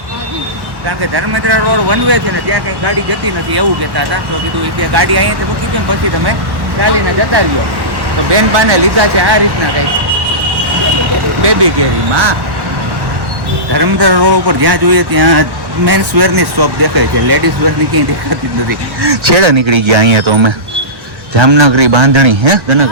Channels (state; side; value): late; left; 1.1 ms